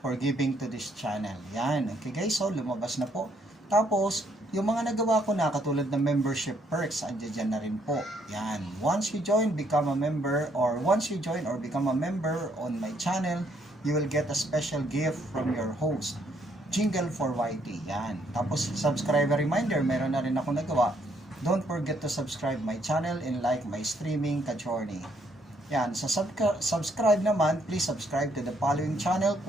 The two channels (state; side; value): normal; both; correlation 0.70